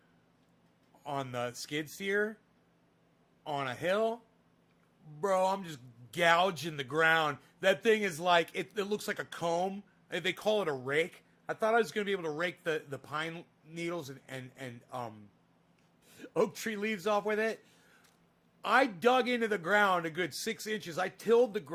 on the skid steer on a hill. Bro, I'm just gouging the ground. That thing is like, it looks like a comb. They call it a rake. I thought I was going to be able to rake the pine needles and oak tree leaves off with it. I dug into the ground a good 6 inches. I tilled the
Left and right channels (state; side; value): identical; both; correlation 1.00